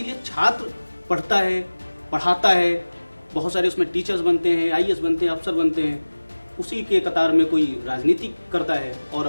छात्र पढ़ता है, पढ़ाता है, बहुत सारे उसमें टीचर्स बनते हैं, IAS बनते हैं, अफसर बनते हैं। उसी के कतार में कोई राजनीति करता है और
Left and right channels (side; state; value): both; inverted; correlation -1.00